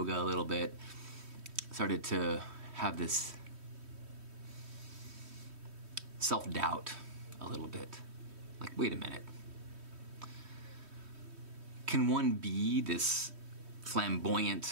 a little bit. Started to have this self-doubt a little bit. Like, wait a minute. Can one be this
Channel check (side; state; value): left; late; 3.1 ms